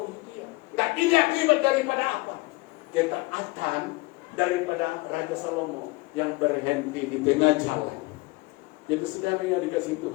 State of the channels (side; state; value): right; quieter; 23.9 dB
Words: dia. Nah, ini akibat daripada apa? Ketaatan daripada Raja Salomo yang berhenti di tengah jalan. Jadi saudara yang dikasih